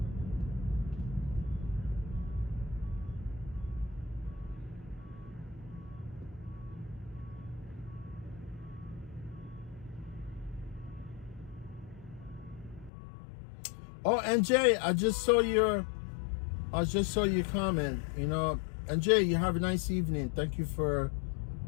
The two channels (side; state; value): right; drops out; at 12.9 s